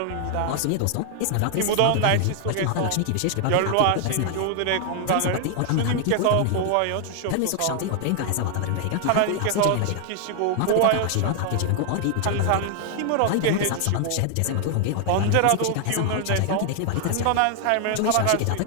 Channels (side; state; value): both; different; correlation 0.00